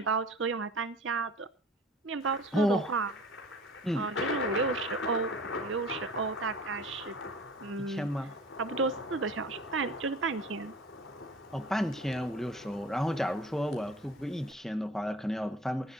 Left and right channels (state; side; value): normal; both; correlation 0.42